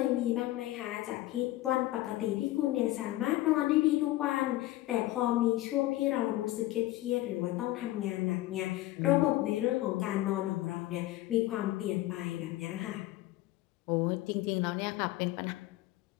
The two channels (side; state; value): right; quieter; 16.6 dB